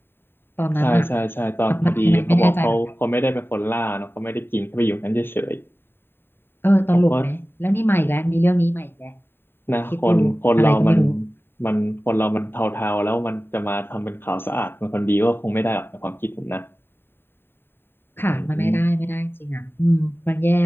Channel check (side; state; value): right; late; 0.11 ms